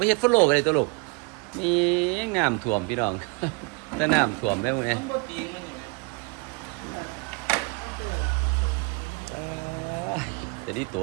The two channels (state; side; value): quieter; left; 30.8 dB